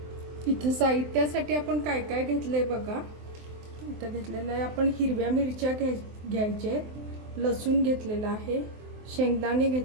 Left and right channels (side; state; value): left; late; 23 ms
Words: इथं साहित्यासाठी आपण काय काय घेतले बघा. इथं घेतलेलं आहे आपण हिरव्या मिरच्या घ्यायचे, लसूण घेतलेला आहे, शेंगदाणे